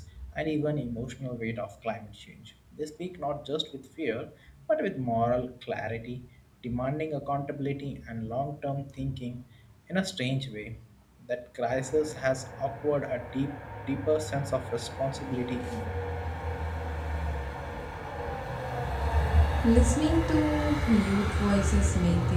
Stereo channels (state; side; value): identical; both; correlation 1.00